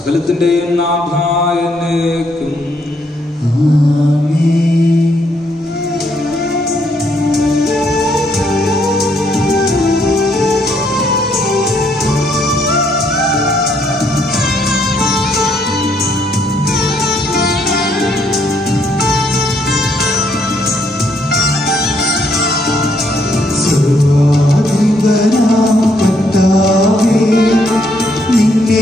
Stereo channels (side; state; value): both; normal; correlation 0.72